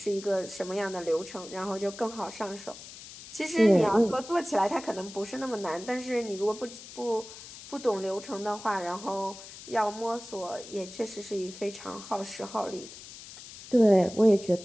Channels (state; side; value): noise; left; hiss, 15 dB below the sound